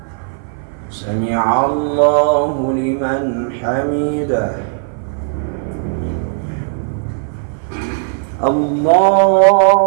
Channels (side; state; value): left; silent; 56 dB below the other